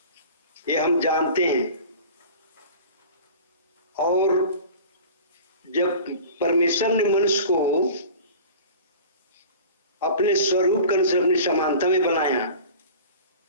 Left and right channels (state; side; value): inverted; both; correlation -0.39